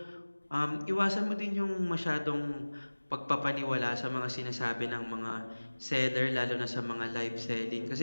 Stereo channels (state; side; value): inverted; both; correlation -1.00